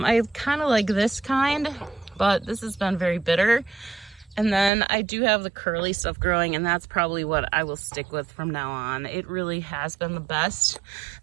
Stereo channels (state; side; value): drops out; left; at 4.7 s